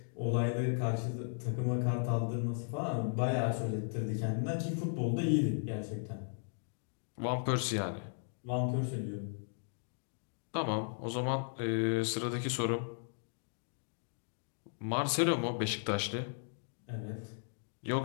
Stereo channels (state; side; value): silent; right; digital silence